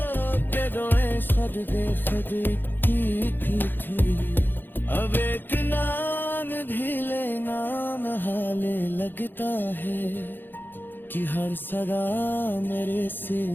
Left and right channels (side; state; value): right; late; 0.095 ms